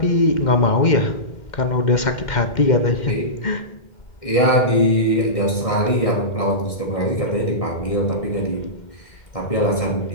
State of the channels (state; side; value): late; right; 2.1 ms